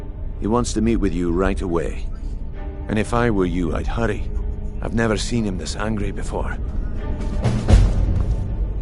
He wants to meet with you right away. And if I were you, I'd hurry. I've never seen him this angry before.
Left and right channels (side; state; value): both; identical; correlation 1.00